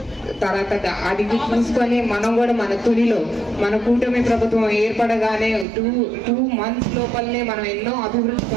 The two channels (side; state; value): left; drops out; at 5.7 s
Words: తర్వాత అది చూసుకొని మనం కూడా మన తునిలో మన కూటమి ప్రభుత్వం ఏర్పడగానే 2 months లోపలనే మనం ఎన్నో అభివృద్ధి